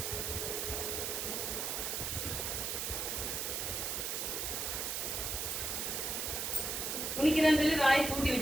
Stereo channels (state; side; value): noise; right; hiss, 1 dB below the sound